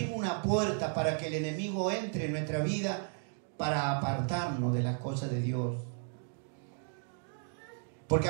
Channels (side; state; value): left; silent; 55 dB below the other